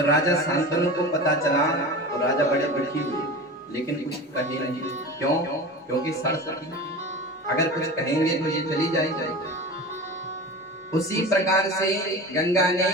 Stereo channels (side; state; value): both; normal; correlation 0.32